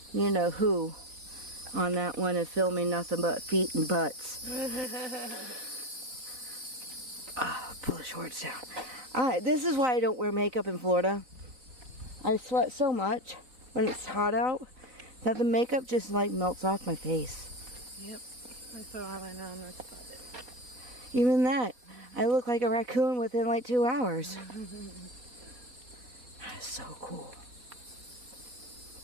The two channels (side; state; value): left; late; 4.0 ms